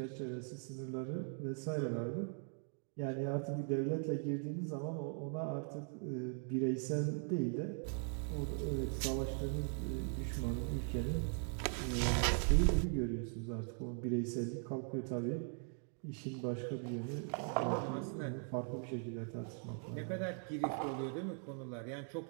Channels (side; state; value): left; silent; 51 dB below the other